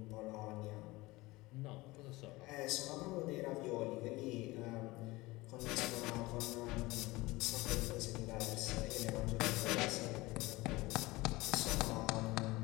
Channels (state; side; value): quieter; right; 20.9 dB